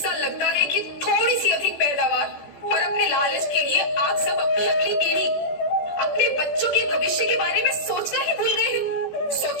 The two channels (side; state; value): right; late; 14 ms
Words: लगता है कि थोड़ी सी अधिक पैदावार और अपने लालच के लिए आप सब अपनी अगली पीढ़ी, अपने बच्चों के भविष्य के बारे में सोचना ही भूल गए हैं।